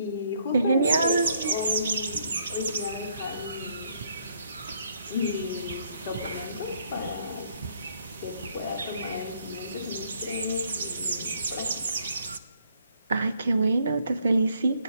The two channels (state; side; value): inverted; both; correlation -0.68